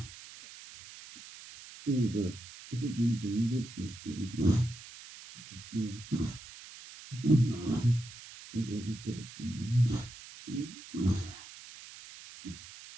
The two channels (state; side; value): noise; right; hiss, 16 dB below the sound